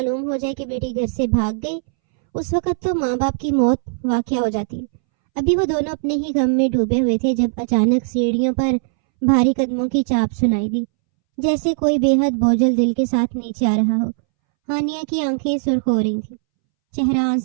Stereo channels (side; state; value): left; silent; 65 dB below the other